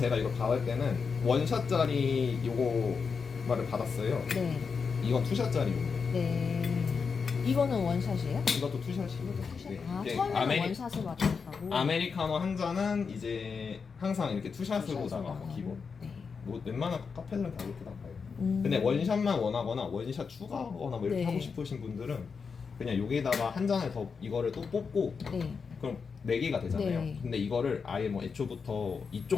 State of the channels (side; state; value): right; quieter; 5.5 dB